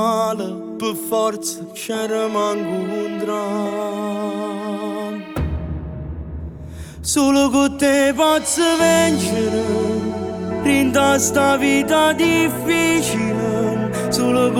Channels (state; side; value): identical; both; correlation 1.00